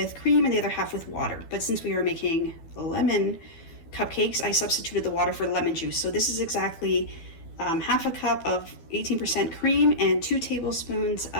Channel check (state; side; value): late; right; 12 ms